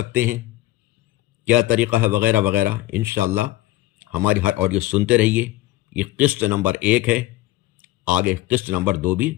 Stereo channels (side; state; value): right; quieter; 16.5 dB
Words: ہیں، کیا طریقہ ہے، وغیرہ وغیرہ۔ انشاءاللہ ہماری ہر آڈیو سنتے رہیے۔ یہ قسط نمبر 1 ہے، آگے قسط نمبر 2 بھی